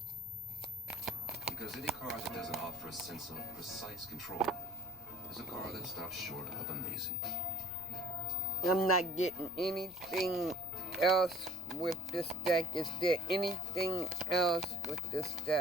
Because any car that doesn't offer a sense of precise control is a car that stops short of amazing. I'm not getting anything else with this deck. Is there anything else with this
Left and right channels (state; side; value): noise; left; rumble, 23 dB below the sound